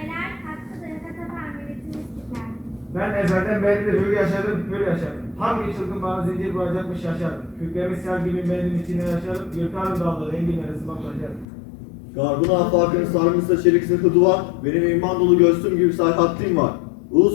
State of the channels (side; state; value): right; drops out; at 11.5 s